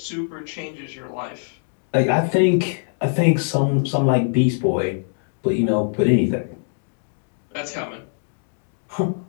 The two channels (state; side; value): silent; right; digital silence